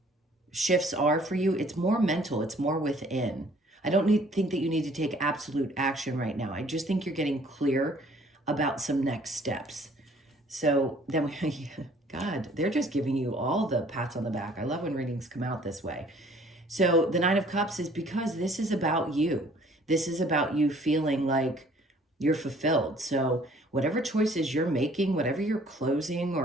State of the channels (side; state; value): both; normal; correlation 0.57